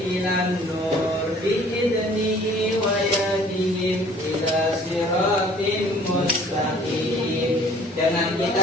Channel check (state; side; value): normal; both; correlation 0.54